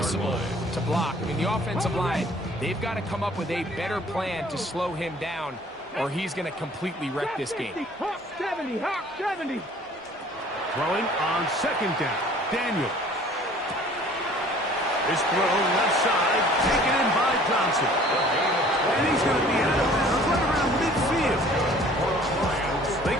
to block. I mean, the offensive line, they've got to come up with a better plan to slow him down, or he's going to completely wreck this game. Hawk 70. Throwing on 2nd down. Daniel. His throw left side, taken in by Johnson. And he's going to be out of bounds right around midfield. They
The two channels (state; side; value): normal; both; correlation 0.52